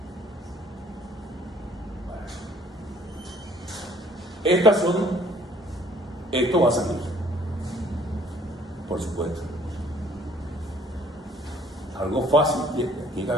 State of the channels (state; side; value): normal; both; correlation 0.58